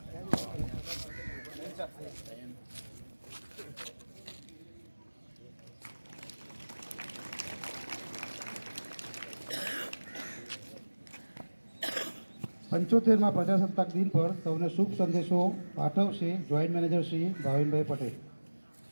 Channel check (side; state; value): both; inverted; correlation -1.00